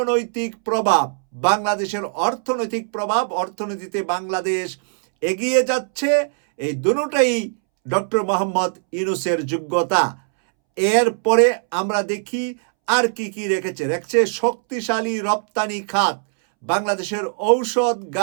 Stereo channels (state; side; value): silent; left; 65 dB below the other